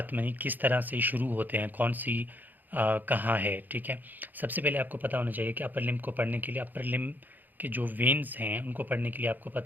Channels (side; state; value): left; late; 0.086 ms